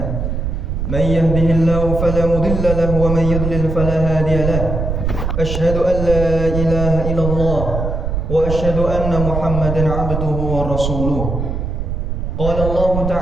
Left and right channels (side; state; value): right; noise; rumble, 3 dB below the sound